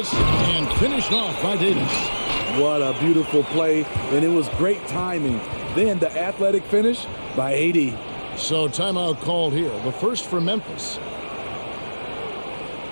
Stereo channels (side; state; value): both; inverted; correlation -1.00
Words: and finished off by Davis. What a beautiful play, and it was great timing. Then the athletic finish by AD. So timeout called here. The first for Memphis.